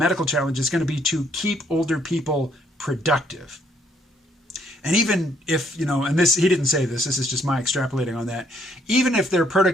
challenge is going to be to keep older people productive. And even if, you know, and this, he didn't say this is just my extrapolating on that, even if their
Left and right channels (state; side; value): normal; both; correlation 0.68